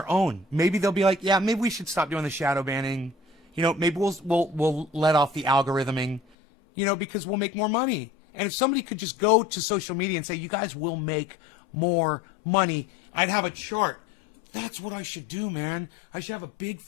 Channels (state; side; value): drops out; right; at 6.2 s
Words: own. Maybe they'll be like, yeah, maybe we should stop doing the shadow banning. You know, maybe we'll let off the algorithming, you know, because we'll make more money. And if somebody could just go to social media and say, you guys will make more money, I'd have a chart. That's what I should do, man. I should have a big